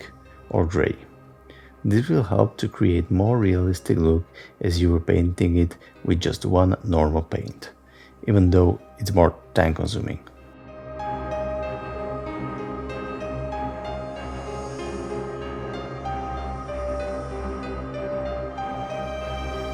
or grey. This will help to create more realistic look as you were painting it with just one normal paint, even though it's more time consuming.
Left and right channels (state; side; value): identical; both; correlation 1.00